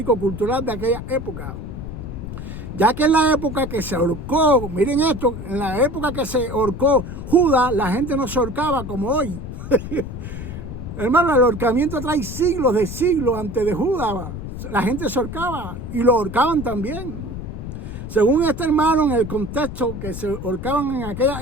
de aquella época. Ya que en la época que se ahorcó, miren esto, en la época que se ahorcó Judas, la gente no se ahorcaba como hoy. Hermano, el ahorcamiento trae siglos de siglos antes de Judas. La gente se ahorcaba y lo ahorcaban también. Según este hermano, en el contexto que se ahorcaban en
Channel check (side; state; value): left; noise; rumble, 8 dB below the sound